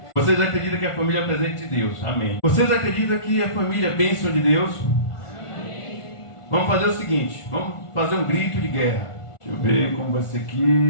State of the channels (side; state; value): right; late; 1.4 ms